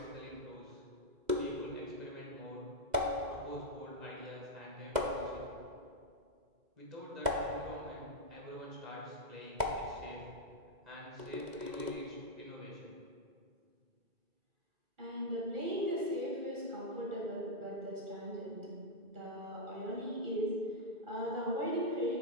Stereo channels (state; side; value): late; left; 2.0 ms